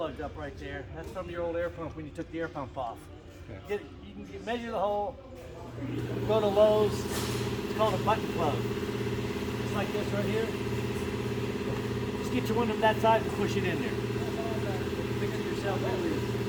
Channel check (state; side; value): identical; both; correlation 1.00